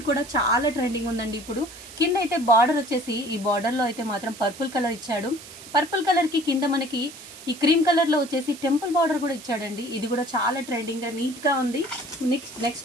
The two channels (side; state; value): right; noise; hiss, 16 dB below the sound